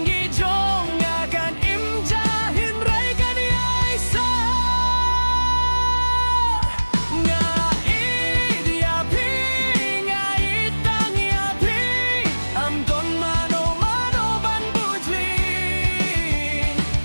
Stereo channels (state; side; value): inverted; both; correlation -1.00